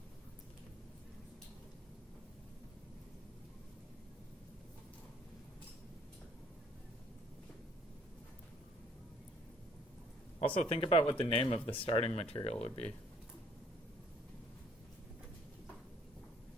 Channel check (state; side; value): normal; both; correlation 0.62